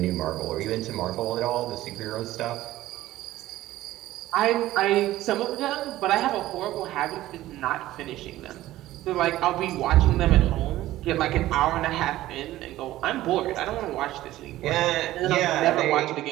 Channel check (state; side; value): quieter; left; 15.3 dB